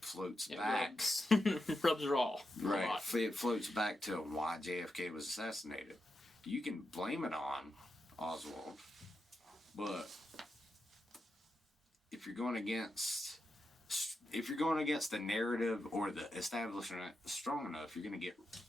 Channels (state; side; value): normal; both; correlation 0.87